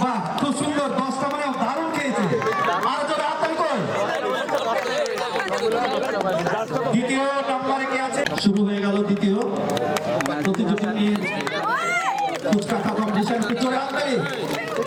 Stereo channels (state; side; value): identical; both; correlation 1.00